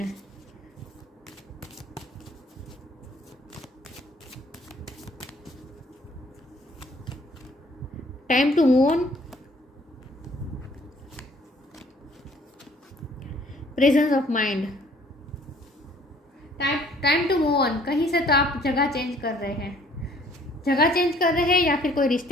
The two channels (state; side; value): normal; both; correlation 0.58